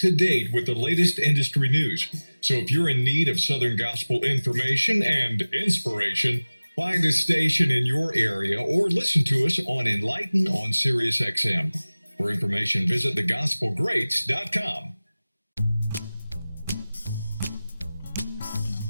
date with the latest industry news. So if you're in need of Southern gospel information and inspiration, find a station in your area or listen to us on Enlighten on Sirius XM. For information, visit thegospelgreats.com.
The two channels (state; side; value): inverted; both; correlation -0.99